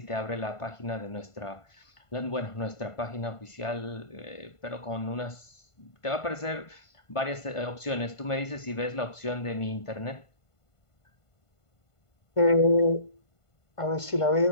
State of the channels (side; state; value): right; late; 1.5 ms